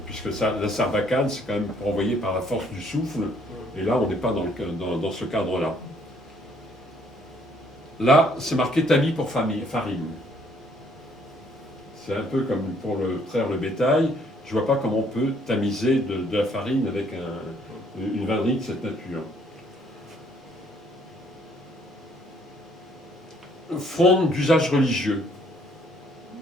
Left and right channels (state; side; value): normal; both; correlation 0.65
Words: puisque la Sarbacane, c'est quand même envoyé par la force du souffle, et là, on n'est pas dans ce cadre-là. Là, c'est marqué tamis pour farine. C'est un peu comme pour traire le bétail. Je ne vois pas comment on peut tamiser de la farine avec une vannerie de cette nature. Fronde d'usage religieux.